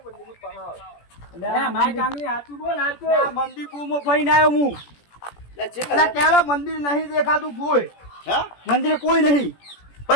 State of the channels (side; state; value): right; late; 17 ms